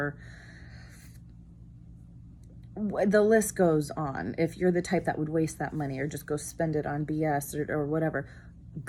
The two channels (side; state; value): both; identical; correlation 1.00